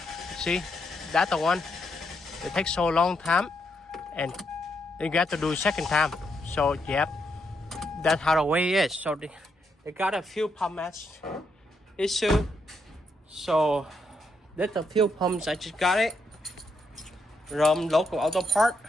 See, that's the one. It takes so long time, and you got to do second time. So yep, that's how the way is. So they got a fuel pump match issue. So that's the fuel pumps. I just got it from local auto part.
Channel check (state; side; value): normal; both; correlation 0.79